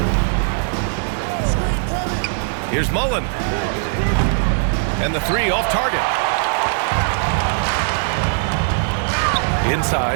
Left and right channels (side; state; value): left; silent; digital silence